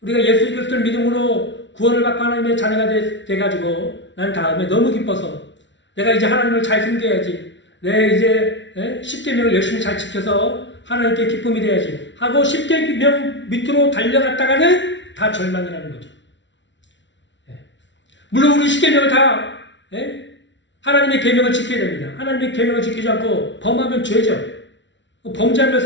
우리가 예수 그리스도를 믿음으로 구원을 받고 하나님의 자녀가 돼가지고 난 다음에 너무 기뻐서 내가 이제 하나님을 잘 섬겨야지. 내 이제 10계명을 열심히 잘 지켜서 하나님께 기쁨이 돼야지 하고 10계명 밑으로 달려갔다가는 다 절망이라는 거죠. 물론 우리 10계명을 다 하나님의 계명을 지켜야 됩니다. 하나님의 계명을 지키지 않고 범하면 죄죠. 범죄하며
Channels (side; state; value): right; late; 0.53 ms